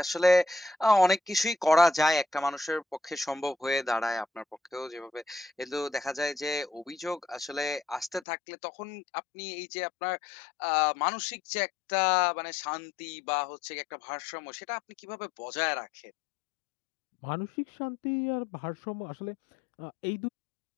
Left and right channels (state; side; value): drops out; right; at 8.2 s